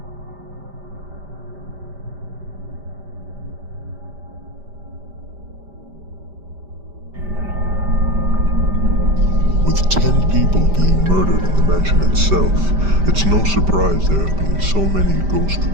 With 10 people being murdered in the mansion itself, it's no surprise there have been so many ghost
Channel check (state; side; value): late; left; 5.1 ms